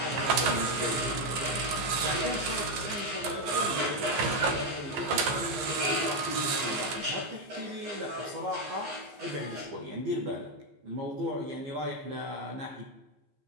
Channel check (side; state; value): left; late; 15 ms